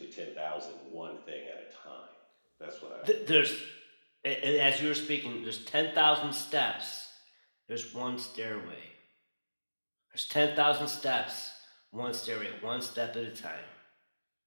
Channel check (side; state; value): both; inverted; correlation -1.00